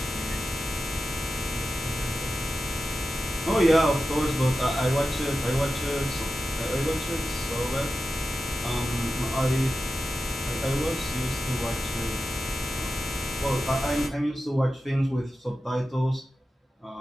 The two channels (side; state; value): both; normal; correlation 0.92